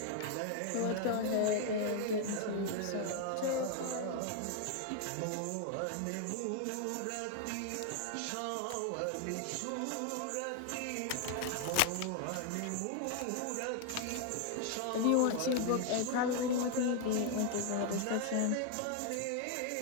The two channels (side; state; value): both; different; correlation 0.00